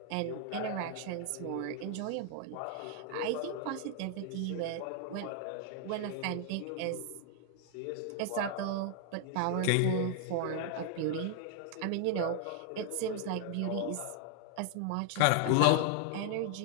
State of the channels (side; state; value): both; different; correlation 0.00